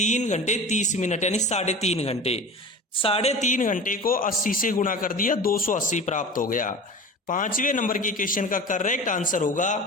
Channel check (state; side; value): normal; both; correlation 0.35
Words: घंटे 30 मिनट यानी 3.5 घंटे। 3.5 घंटे को 80 से गुणा कर दिया, 280 प्राप्त हो गया। 5वें नंबर के क्वेश्चन का करेक्ट आंसर